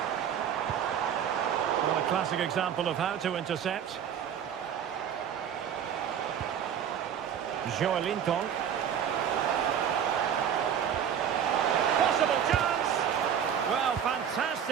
Well, a classic example of how to intercept. Joelinton. Possible chance! Well,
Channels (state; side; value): quieter; left; 8.7 dB